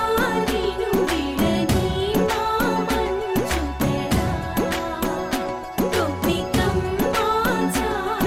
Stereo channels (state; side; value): identical; both; correlation 1.00